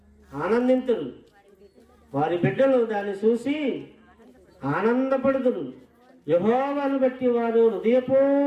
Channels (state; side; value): identical; both; correlation 1.00